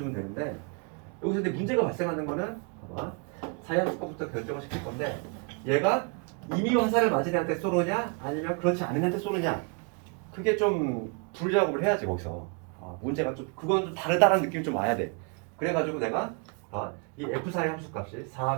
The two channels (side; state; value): left; quieter; 35.5 dB